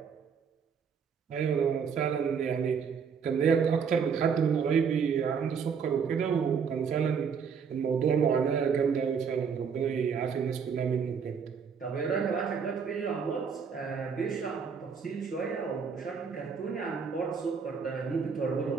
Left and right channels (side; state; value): left; quieter; 6.4 dB